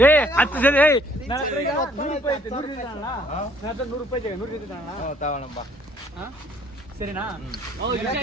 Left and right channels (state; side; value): normal; both; correlation 0.62